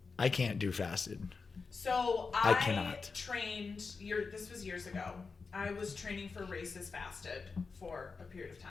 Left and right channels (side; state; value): right; quieter; 4.7 dB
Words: I can't do fasted. So I cannot. trained. This was years ago. I was training for races fasted for a period of